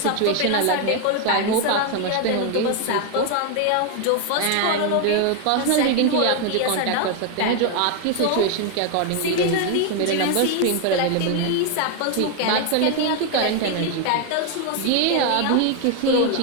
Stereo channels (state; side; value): different; both; correlation 0.01